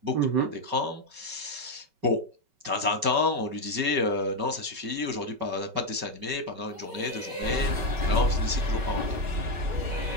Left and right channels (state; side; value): late; left; 5.3 ms